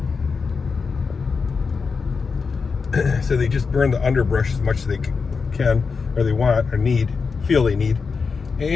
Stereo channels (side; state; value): right; quieter; 5.1 dB